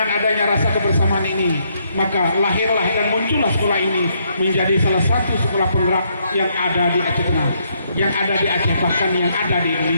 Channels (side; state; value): both; inverted; correlation -0.73